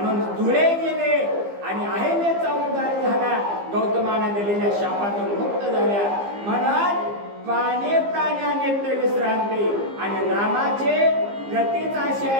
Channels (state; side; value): late; left; 15 ms